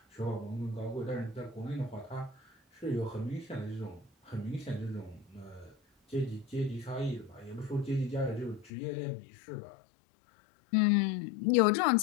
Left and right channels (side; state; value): right; drops out; at 8.7 s